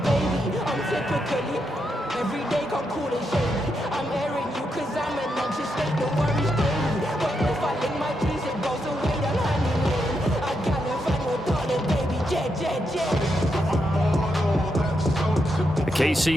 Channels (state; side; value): normal; both; correlation 0.83